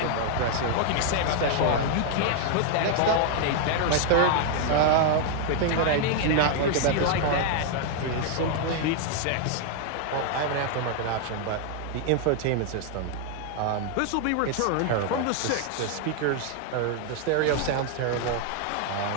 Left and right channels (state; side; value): different; both; correlation 0.00